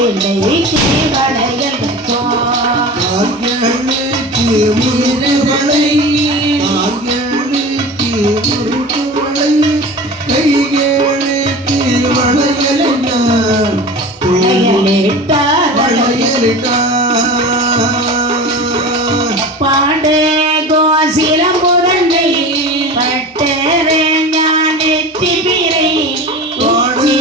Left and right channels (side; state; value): both; normal; correlation 0.34